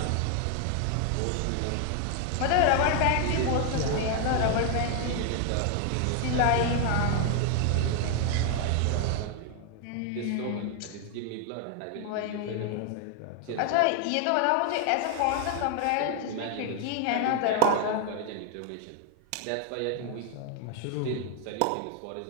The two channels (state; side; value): different; both; correlation 0.00